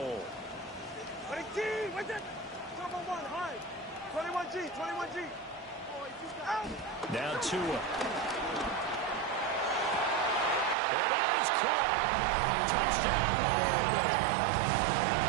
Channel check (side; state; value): left; drops out; at 10.8 s